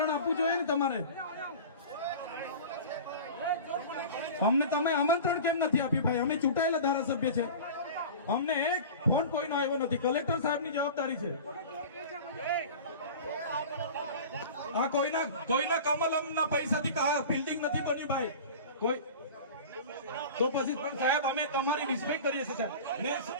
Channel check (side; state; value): both; inverted; correlation -0.35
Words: આપવું જોઈએ ને તમારે. અમને તમે આમંત્રણ કેમ નથી આપ્યું ભાઈ? અમે ચૂંટાયેલા ધારાસભ્ય છે, અમને એક ફોન કોઈનો આવ્યો નથી. કલેક્ટર સાહેબની જવાબદારી છે. આ કોઈના કમલમના પૈસાથી બિલ્ડિંગ નથી બની ભાઈ. કોઈ તો પછી પણ સાહેબ, અમે તમારી રિસ્પેક્ટ કરીએ છીએ સાહેબ, ને